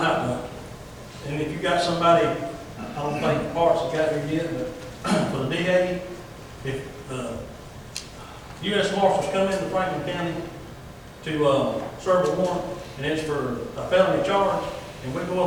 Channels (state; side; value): identical; both; correlation 1.00